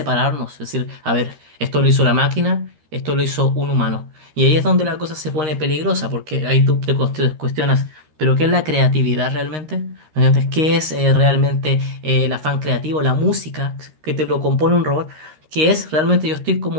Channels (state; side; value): late; left; 13 ms